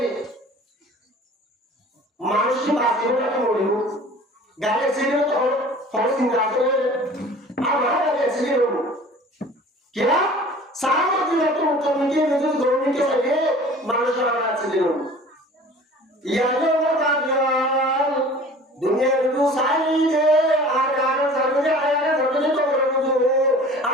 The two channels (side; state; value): both; normal; correlation 0.45